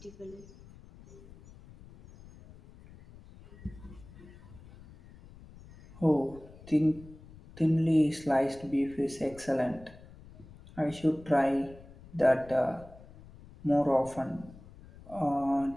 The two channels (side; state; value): left; noise; rumble, 20 dB below the sound